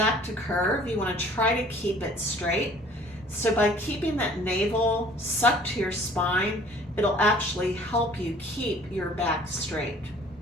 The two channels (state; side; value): normal; both; correlation 0.53